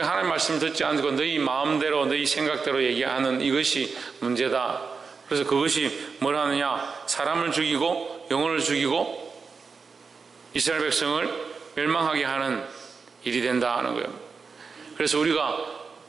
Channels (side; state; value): left; quieter; 5.1 dB